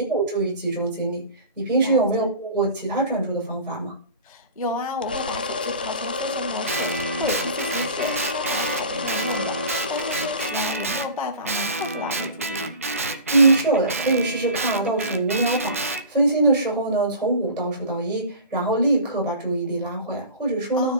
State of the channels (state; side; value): inverted; both; correlation -0.37